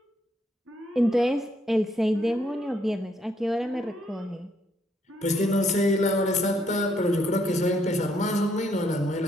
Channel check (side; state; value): both; normal; correlation 0.72